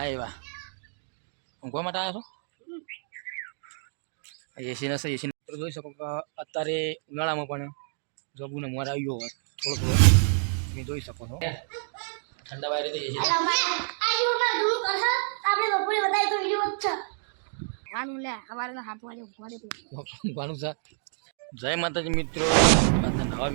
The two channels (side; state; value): left; silent; digital silence